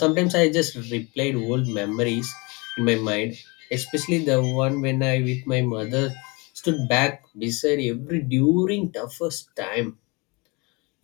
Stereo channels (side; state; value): right; quieter; 28.3 dB